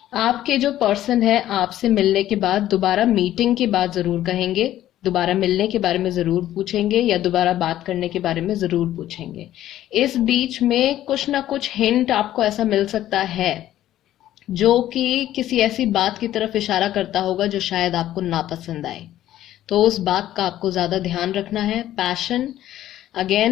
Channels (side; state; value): right; quieter; 13.1 dB